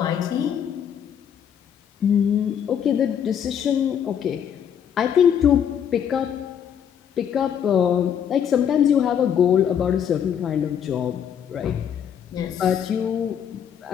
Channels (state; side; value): quieter; right; 8.5 dB